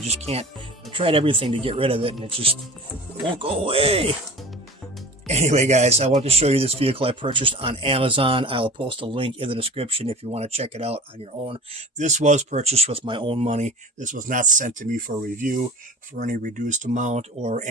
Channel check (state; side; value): normal; both; correlation 0.38